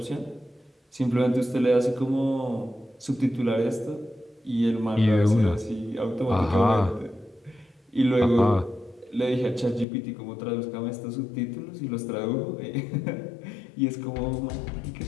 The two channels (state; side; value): drops out; right; at 9.9 s